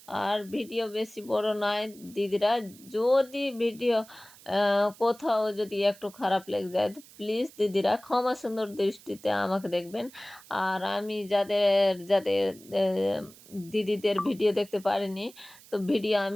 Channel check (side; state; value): right; noise; hiss, 22 dB below the sound